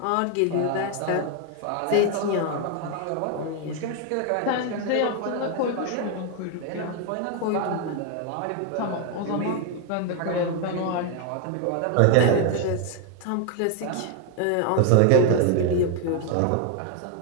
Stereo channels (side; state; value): both; different; correlation 0.01